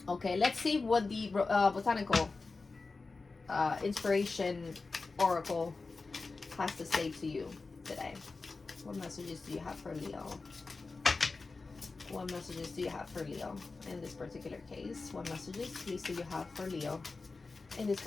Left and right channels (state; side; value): quieter; right; 3.9 dB